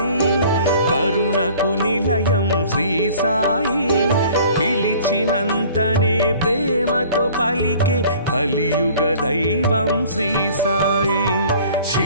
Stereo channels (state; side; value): inverted; both; correlation -0.50